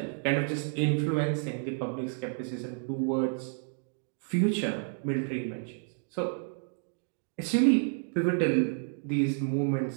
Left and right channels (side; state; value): left; silent; 58 dB below the other